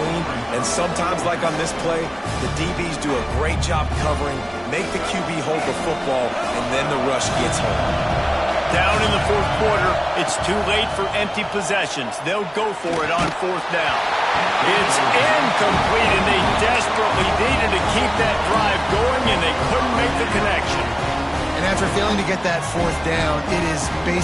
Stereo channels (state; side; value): identical; both; correlation 1.00